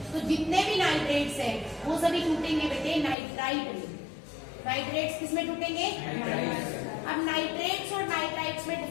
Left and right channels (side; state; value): right; drops out; at 3.2 s